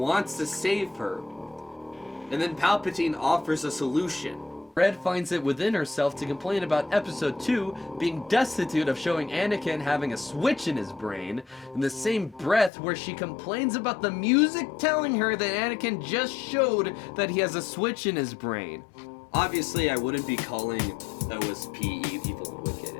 to save her. And then Palpatine offers a solution. Red finds it within herself to complain about Episode 2 being destitute of showing Anakin having a switch in his brain, in the same breath where she complains about the music telling her that Anakin just showed that he has a switch in his brain. Obviously, I wouldn't be calling OSP evil and wicked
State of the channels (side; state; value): right; drops out; at 12.7 s